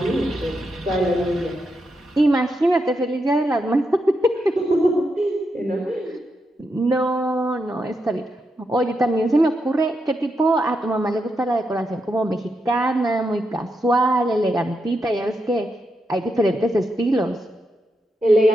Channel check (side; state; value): both; normal; correlation 0.84